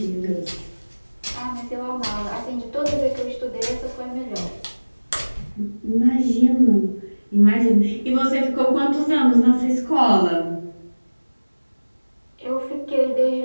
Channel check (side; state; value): both; inverted; correlation -1.00